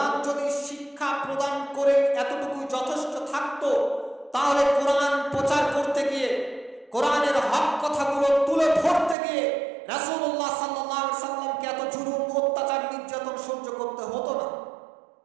শিক্ষা প্রদান করে এতটুকু যথেষ্ট থাকতো, তাহলে কোরআন প্রচার করতে গিয়ে, কোরআনের হক কথাগুলো তুলে ধরতে গিয়ে রাসূলুল্লাহ সাল্লাল্লাহু আলাইহি সাল্লামকে এত জুলুম, অত্যাচার, নির্যাতন সহ্য করতে হতো না।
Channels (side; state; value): left; drops out; at 9.2 s